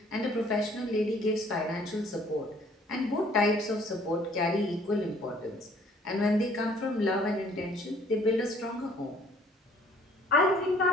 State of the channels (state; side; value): normal; both; correlation 0.58